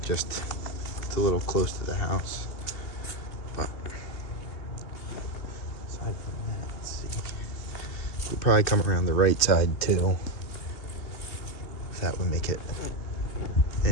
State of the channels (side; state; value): right; late; 2.9 ms